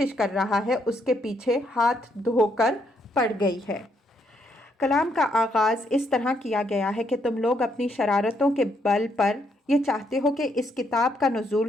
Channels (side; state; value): both; normal; correlation 0.74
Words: کر رہا ہے اس کے پیچھے ہاتھ دھو کر پڑ گئی ہے۔ کلام کا آغاز اس طرح کیا گیا ہے کہ تم لوگ اپنی شرارتوں کے بل پر یہ چاہتے ہو کہ اس کتاب کا